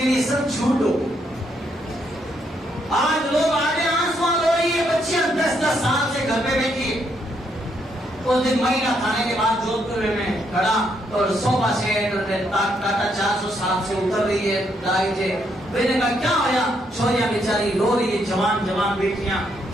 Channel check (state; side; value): normal; both; correlation 0.75